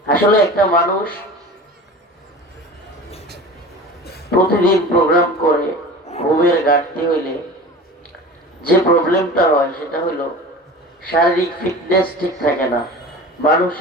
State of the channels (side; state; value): both; normal; correlation 0.36